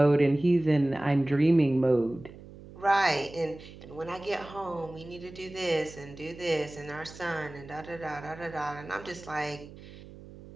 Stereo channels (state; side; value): noise; right; hum, 17 dB below the sound